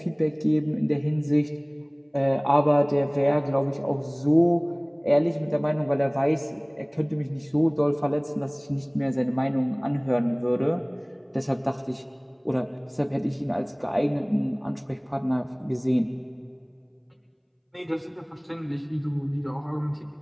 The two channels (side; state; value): both; identical; correlation 1.00